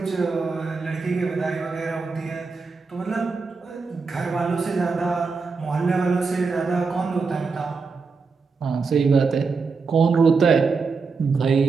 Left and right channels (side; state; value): left; quieter; 4.6 dB